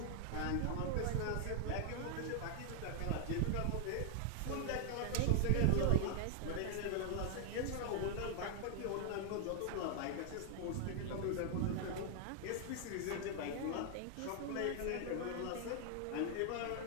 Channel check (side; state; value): both; different; correlation 0.00